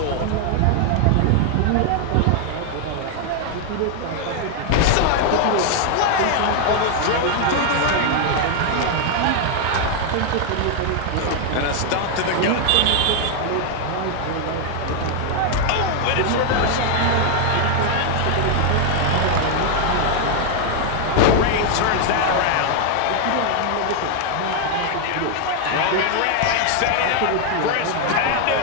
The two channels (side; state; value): both; different; correlation 0.00